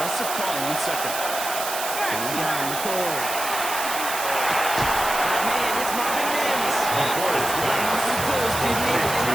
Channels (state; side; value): noise; right; hiss, 5 dB below the sound